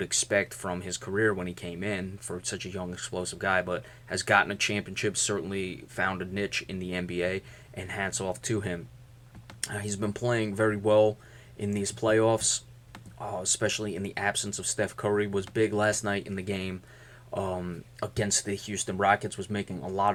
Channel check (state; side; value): identical; both; correlation 1.00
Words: expect from his career when he came in for such a young, explosive guy, but has gotten a championship, certainly found a niche in the NBA, and hats off to him. He's been playing very well in these playoffs, especially in the absence of Steph Curry. Was big last night in the game against the Houston Rockets, was making a